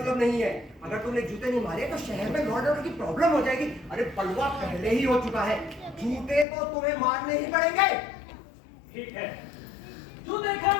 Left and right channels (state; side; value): drops out; right; at 6.5 s